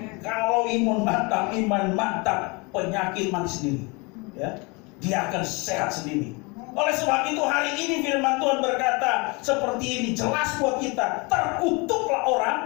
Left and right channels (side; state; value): right; quieter; 28.4 dB